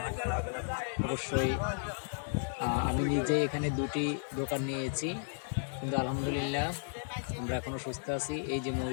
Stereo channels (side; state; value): right; silent; digital silence